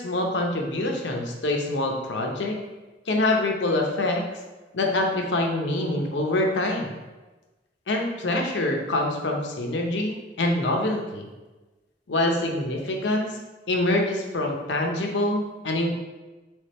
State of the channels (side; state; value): both; normal; correlation 0.28